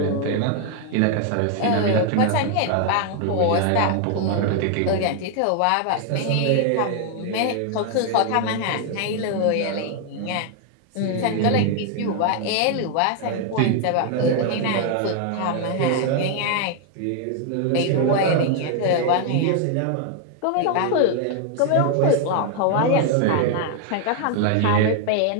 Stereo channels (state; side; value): different; both; correlation 0.00